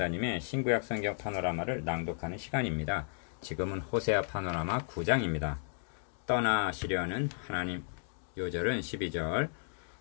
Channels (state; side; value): silent; right; 55 dB below the other